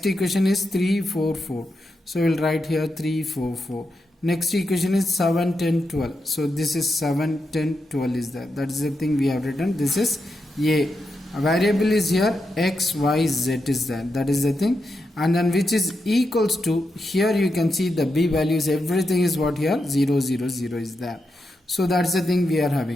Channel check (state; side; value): normal; both; correlation 0.86